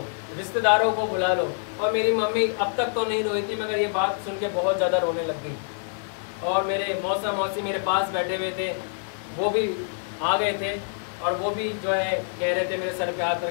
रिश्तेदारों को बुला लो। और मेरी मम्मी अब तक तो नहीं रोई थी, मगर ये बात सुन के बहुत ज़्यादा रोने लग गई। और मेरे मौसा मौसी मेरे पास बैठे हुए थे, वो भी आ गए थे और वो भी जो है कह रहे थे मेरे सर पे हाथ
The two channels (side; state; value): right; silent; digital silence